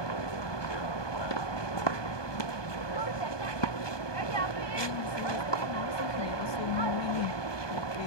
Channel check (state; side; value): late; right; 1.2 ms